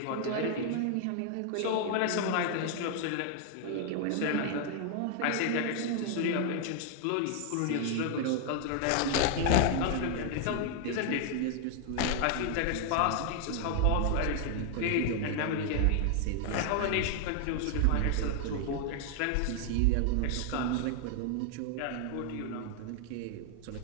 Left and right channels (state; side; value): different; both; correlation 0.00